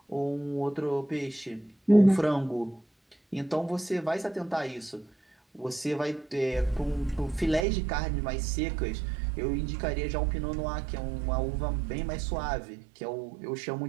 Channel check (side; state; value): left; drops out; at 7.7 s